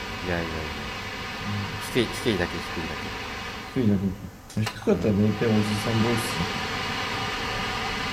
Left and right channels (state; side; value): identical; both; correlation 1.00